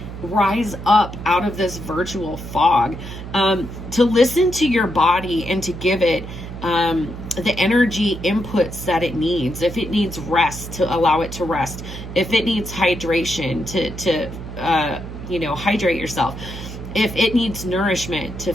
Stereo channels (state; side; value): noise; right; hum, 10 dB below the sound